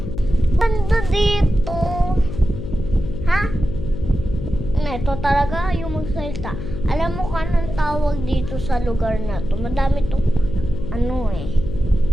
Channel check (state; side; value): noise; left; hum, 7 dB below the sound